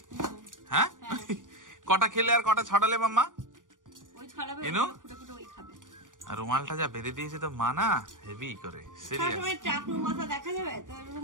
হ্যাঁ, কটা খেলে আর কটা ছড়ালে মাম্মা? ওই ছড়াবে, এনো ফুটে ফুটে ওই খাবে। আর রুমালটা যা বেঁধে দিয়েছে তো মা না, হেভি করে সিরিয়াস। সবসময় চাকরু মাথা দেখা যাবে তো,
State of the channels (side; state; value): left; late; 0.88 ms